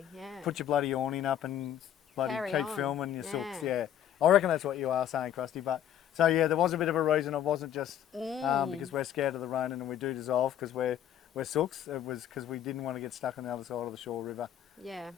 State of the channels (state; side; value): quieter; right; 10.5 dB